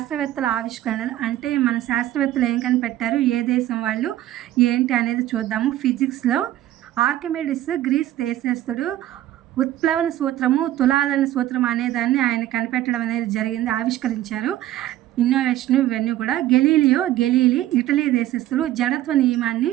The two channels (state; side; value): quieter; left; 13.7 dB